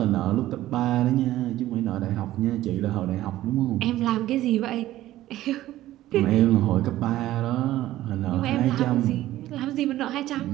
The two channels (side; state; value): left; quieter; 14.7 dB